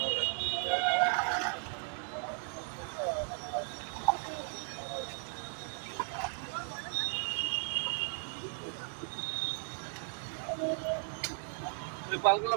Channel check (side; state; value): left; silent; 54 dB below the other